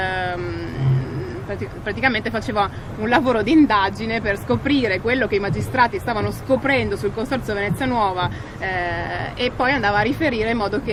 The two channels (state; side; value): identical; both; correlation 1.00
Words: praticamente faceva un lavoro di indagine per scoprire quello che i magistrati stavano scoprendo sul Consorzio Venezia Nuova, e poi andava a riferire in modo